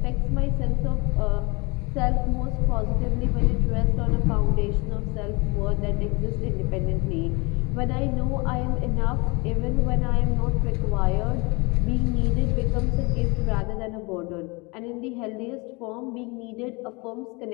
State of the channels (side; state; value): right; quieter; 27.5 dB